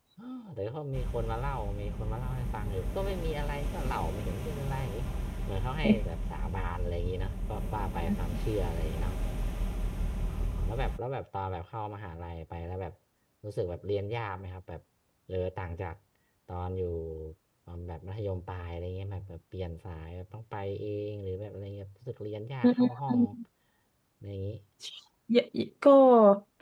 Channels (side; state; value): both; identical; correlation 1.00